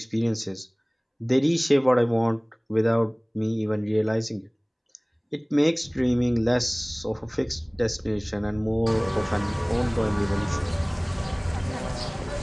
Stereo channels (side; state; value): both; identical; correlation 1.00